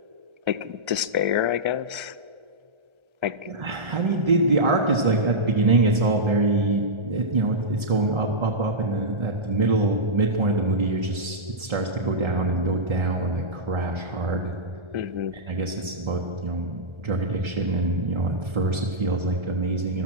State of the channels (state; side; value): late; left; 1.3 ms